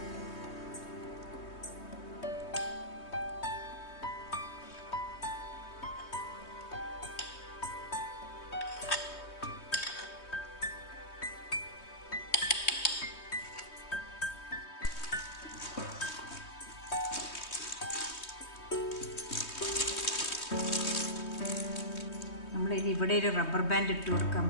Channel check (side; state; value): right; late; 3.2 ms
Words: ഇത് ഇവിടെ ഒരു റബ്ബർ ബാൻഡ് ഇട്ട് കൊടുക്കാൻ